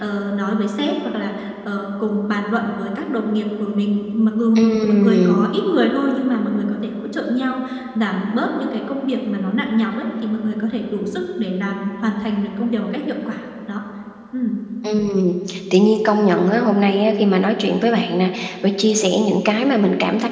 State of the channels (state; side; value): identical; both; correlation 1.00